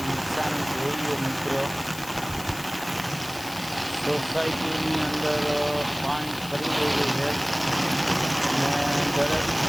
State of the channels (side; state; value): left; noise; hiss, 14 dB below the sound